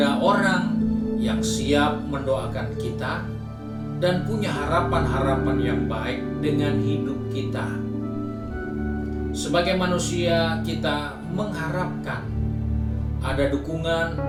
orang yang siap mendoakan kita dan punya harapan-harapan yang baik dengan hidup kita. Sebagai manusia, kita mengharapkan ada dukungan,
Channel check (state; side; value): identical; both; correlation 1.00